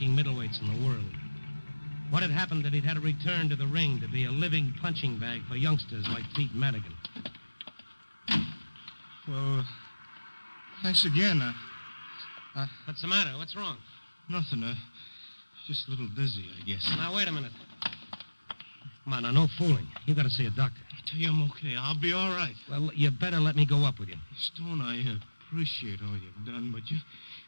middleweights in the world. What had happened that he'd had to return to the ring to be a living punching bag for youngsters like Pete Madigan. Well, thanks again. What's the matter? What's wrong? Nothing. Just a little dizzy, I guess. Now, wait a minute. Come on, now, no fooling. You got to see a doctor. I tell you, I'm okay. I'll be all right. Well, you better let me go up with you. Stone, I appreciate all you've done, but you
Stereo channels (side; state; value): both; inverted; correlation -1.00